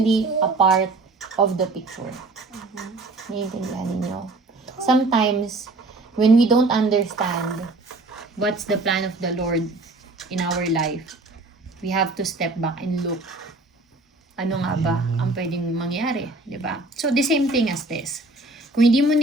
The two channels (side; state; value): left; quieter; 3.1 dB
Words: a part of the picture. Naiintindihan ninyo? Sometimes, when we don't understand what's the plan of the Lord in our life, we have to step back and look. Ano nga ba ang pwedeng mangyari, di ba? So, the same thing as this. Kung hindi mo